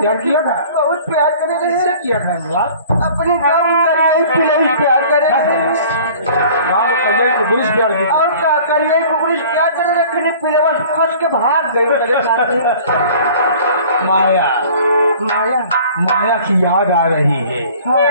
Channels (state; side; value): inverted; both; correlation -0.47